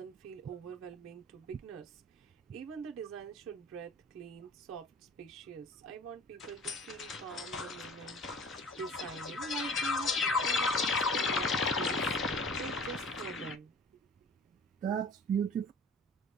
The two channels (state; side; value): normal; both; correlation 0.44